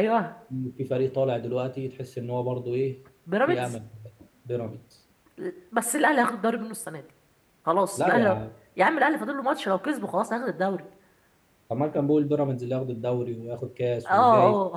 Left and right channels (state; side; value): identical; both; correlation 1.00